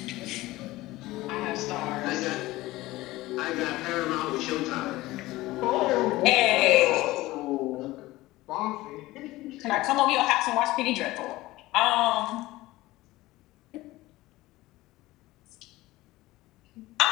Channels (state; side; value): quieter; right; 18.4 dB